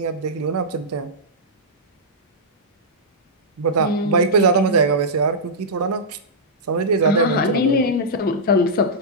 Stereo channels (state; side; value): normal; both; correlation -0.11